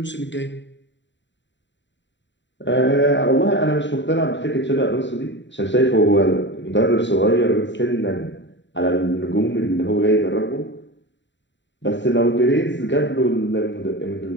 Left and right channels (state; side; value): late; right; 0.53 ms